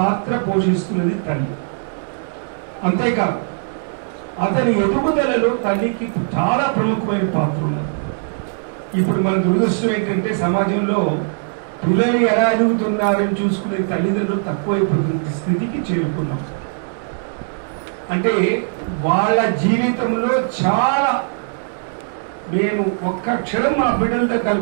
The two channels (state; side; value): silent; left; digital silence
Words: పోషిస్తున్నది తల్లి. అంతేకాదు అతని ఎదుగుదలలో తల్లికి చాలా ప్రముఖమైన పాత్ర ఉన్నది. ఇప్పుడు మన దురదృష్టం ఏంటంటే సమాజంలో పిల్లలు ఎలా ఎదుగుతున్నారని చూసుకునే తల్లిదండ్రులు తక్కువైపోతున్న స్థితికి చేరుకున్నాం. అంటే వాళ్ళ జీవితంలో చాలా, నేను ఒక్క క్షణం మా బిడ్డలతో